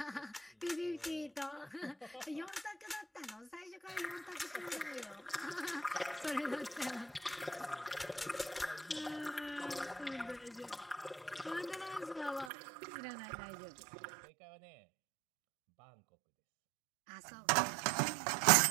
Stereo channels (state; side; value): drops out; left; at 12.5 s